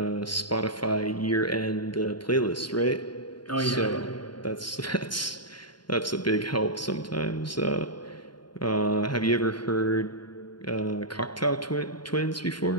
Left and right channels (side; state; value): right; late; 0.71 ms